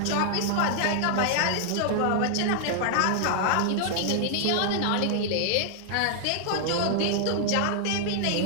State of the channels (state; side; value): different; both; correlation -0.01